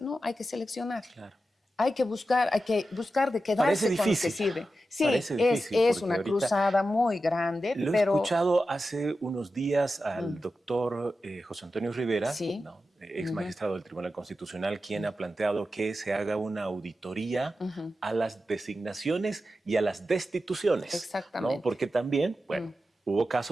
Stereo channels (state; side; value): normal; both; correlation 0.91